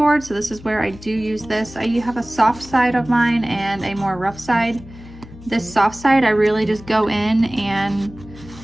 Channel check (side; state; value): left; noise; hum, 18 dB below the sound